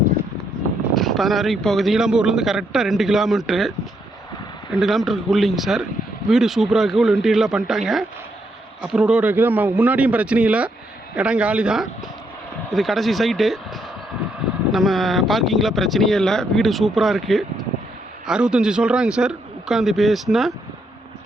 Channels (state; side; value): normal; both; correlation 0.76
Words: 16 வரைக்கும் போகுது. நீலம்பூர்லேருந்து கரெக்டாக 2 கிலோமீட்ரு, 2 கிலோமீட்டருக்கு உள்ளிங்க சார். வீடு சூப்பராக இருக்குது, உள்ள இன்டீரியர்லாம் பண்ணிட்டாங்க. அப்புறம் ரோடு இருக்குது. முன்னாடியும் பிரச்சனை இல்லை, இடம் காலி தான். இது கடைசி சைட்டு. நம்ம பார்க்கிங்கில் பிரச்சனையே இல்லை. வீடு சூப்பராக இருக்குது. 65 சொல்கிறாங்க சார். உட்காந்து பேசினா